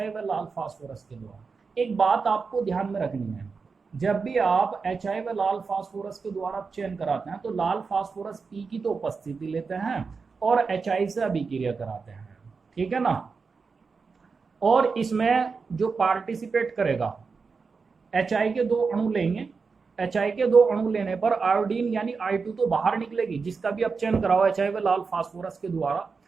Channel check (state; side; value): quieter; left; 4.9 dB